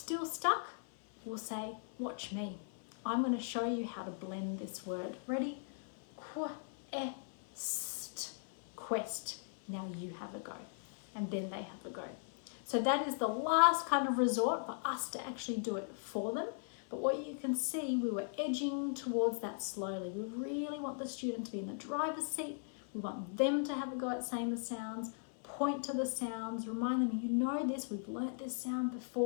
stuck, we'll say, watch me. I'm going to show you how to blend this word. Ready? Qu, st, quest. Now you have a go. And then they have a go. So that is the last kind of resort for us to actually do it for them. But what you can see, we were edging towards that slowly. We really want the student to be in the driver's seat. We want them to have a go at saying the sounds, point to the sounds, remind them, you know this, we've learnt this sound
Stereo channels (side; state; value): right; silent; 52 dB below the other